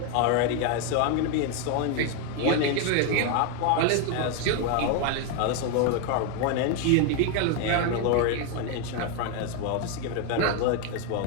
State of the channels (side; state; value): both; different; correlation 0.01